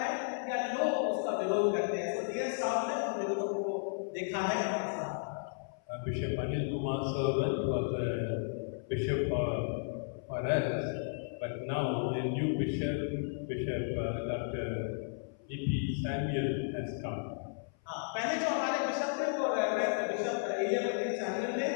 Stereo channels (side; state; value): right; silent; 55 dB below the other